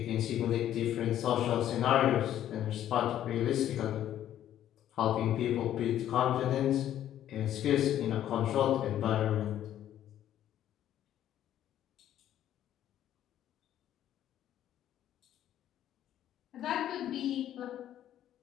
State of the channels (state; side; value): quieter; right; 11.5 dB